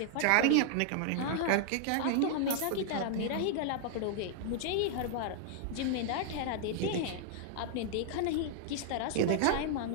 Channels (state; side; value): different; both; correlation -0.01